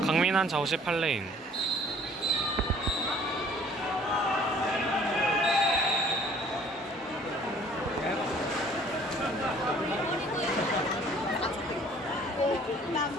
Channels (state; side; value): normal; both; correlation 0.54